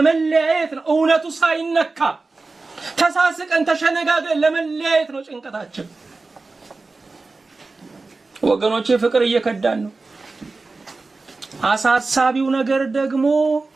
ነው። እውነቱ ሳይነካ ተሳስቀን ተሸነጋግረን ለመለያየት ነው ጭንቀታችን። ወገኖቼ ፍቅር እየከዳን ነው። አሳሳቢው ነገር ደግሞ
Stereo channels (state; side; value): quieter; left; 3.7 dB